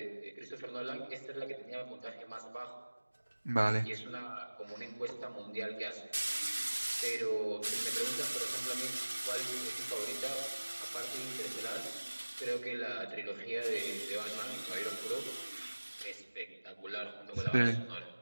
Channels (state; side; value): inverted; both; correlation -1.00